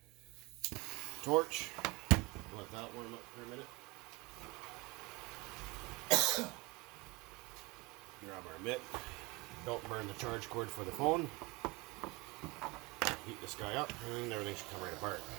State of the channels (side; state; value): left; quieter; 24.0 dB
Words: torch, let that warm up for a minute. Grab our mitt. Don't burn the charge cord for the phone. Heat this guy up, and everything should come right apart.